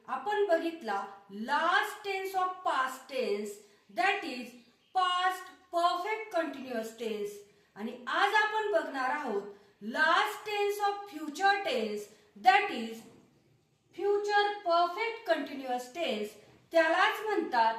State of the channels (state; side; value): identical; both; correlation 1.00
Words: आपण बघितला last tense of past tense, that is past perfect continuous tense. आणि आज आपण बघणार आहोत last tense of future tense, that is future perfect continuous tense. त्यालाच